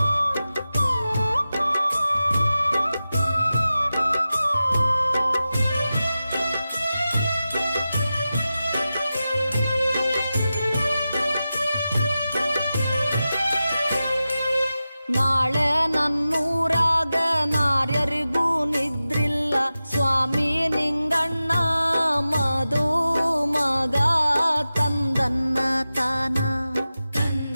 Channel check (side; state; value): both; inverted; correlation -0.94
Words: ನಾಳೆ ನನ್ನೂರಾಗ ನಾರ್ಯರಿಗೂ ನಿದ್ರಿಲ್ಲ ಸ್ವಾಮಿ ನಿಂಗಣ್ಣ ಮಧು ಮಗ ತಂದನ್ನ ತಾನ